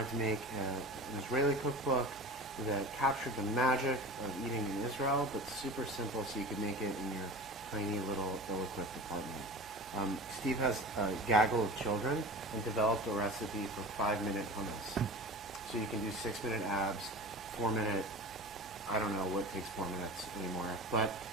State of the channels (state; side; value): noise; right; hum, 23 dB below the sound